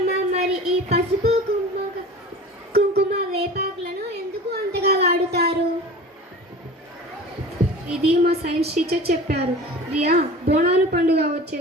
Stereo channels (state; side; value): normal; both; correlation 0.38